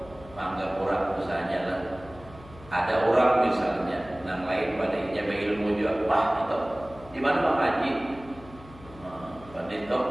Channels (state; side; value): noise; left; hum, 20 dB below the sound